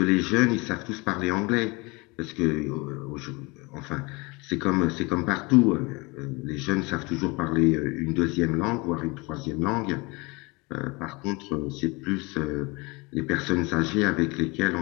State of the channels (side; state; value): right; quieter; 26.1 dB